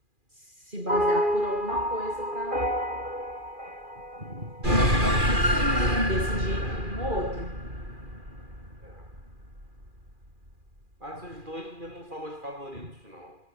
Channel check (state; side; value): late; left; 2.4 ms